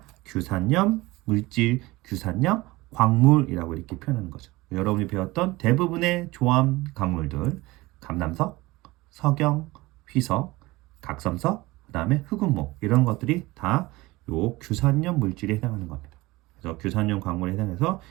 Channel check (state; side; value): quieter; left; 20.6 dB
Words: 규산염 물질, 규산염 광물이라고 이렇게 표현하는 거죠. 여러분이 배웠던 대부분의 조합 강물들 감남석, 석영, 휘석, 각섬석, 그 다음에 흑운모 이런 것들이 다 요 규산염 물질에 해당하는 겁니다. 그래서 규산염 광물에 해당해서